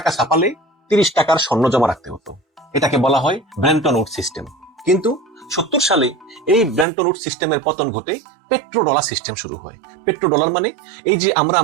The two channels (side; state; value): left; drops out; at 6.9 s